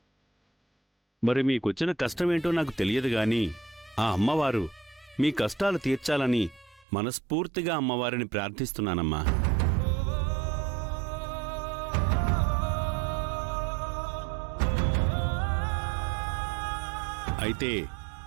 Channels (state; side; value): drops out; left; at 6.9 s